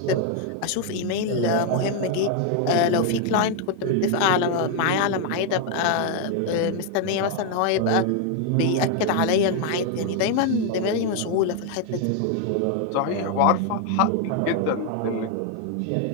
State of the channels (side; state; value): both; different; correlation 0.01